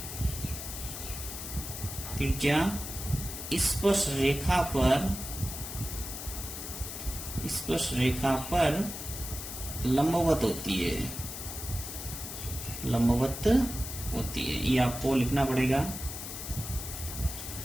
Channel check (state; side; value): noise; left; hiss, 8 dB below the sound